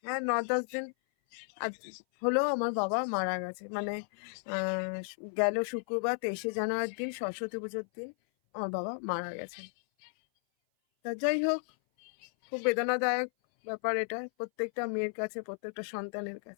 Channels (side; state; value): right; silent; 55 dB below the other